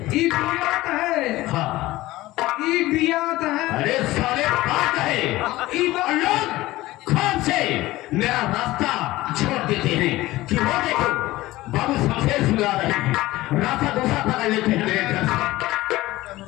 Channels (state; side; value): quieter; right; 17.8 dB